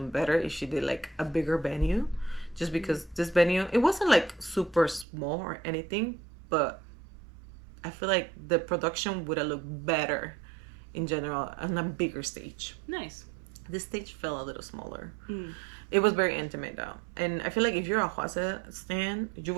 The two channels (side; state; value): left; drops out; at 5.1 s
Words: better if she did like a bigger venue, just because this venue, it wasn't like super small or anything, but I feel like the production would have looked better in general on a bigger stage. Nice. This stage felt a little smaller. It was very intimate though, and I feel like if you're a Hwasa stan, you